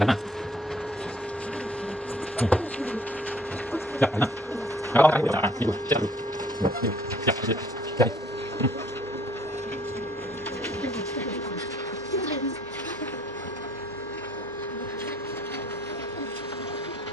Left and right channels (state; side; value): normal; both; correlation 0.58